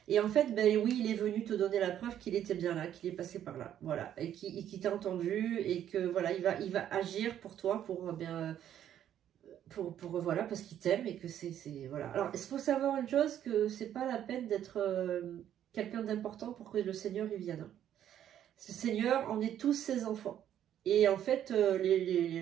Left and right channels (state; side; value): quieter; left; 10.6 dB